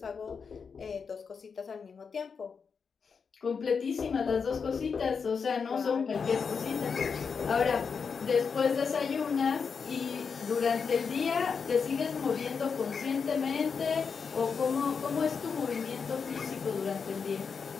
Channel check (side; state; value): right; quieter; 5.8 dB